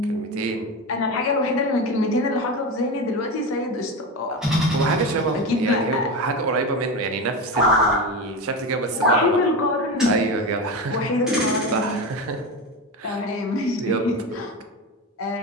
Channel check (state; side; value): normal; both; correlation 0.20